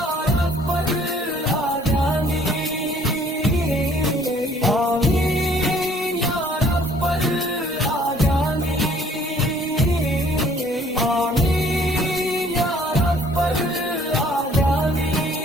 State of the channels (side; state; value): both; normal; correlation 0.59